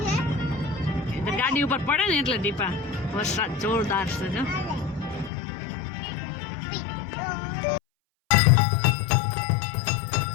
ગાડી ઉપર પડે ને એટલે દીપા વરસાદ જોરદાર છે જો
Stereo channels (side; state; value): right; drops out; at 5.3 s